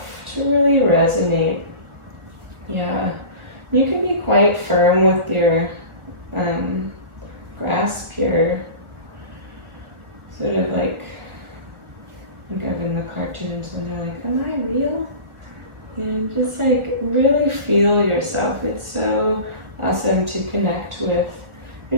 to really resonate. Yeah, you can be quite firm with your grasp here, sort of like, think of in the cartoons when they're like, am I real? And just like really feel yourself. It's so awesome to connect with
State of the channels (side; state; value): left; late; 1.3 ms